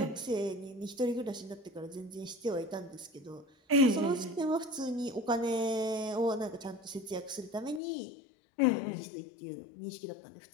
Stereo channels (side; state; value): right; drops out; at 7.8 s